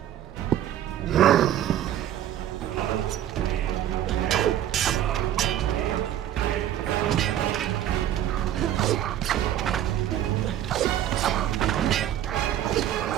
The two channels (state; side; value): quieter; left; 11.6 dB